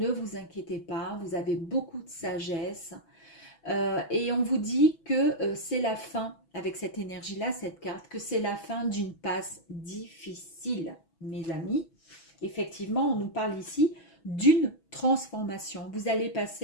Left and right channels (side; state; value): right; late; 6.1 ms